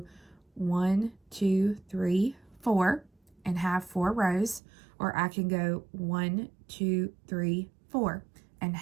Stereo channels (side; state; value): left; drops out; at 4.6 s